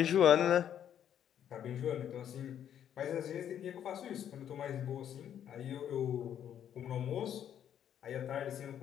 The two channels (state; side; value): quieter; right; 9.8 dB